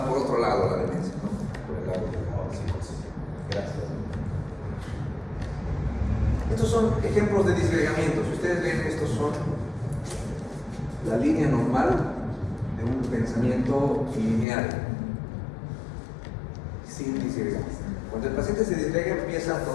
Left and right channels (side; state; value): right; drops out; at 14.5 s